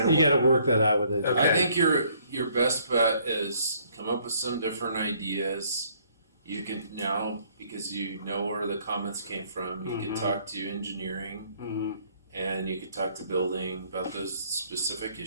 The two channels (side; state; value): both; inverted; correlation -0.63